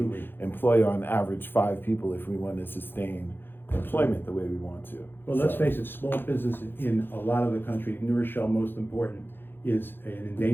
employ on average 5 people if we want to sustain employment the way we want to. Well, let's So, face it, small business in a lot of the country, New Rochelle, most important, is an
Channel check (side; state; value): right; late; 0.10 ms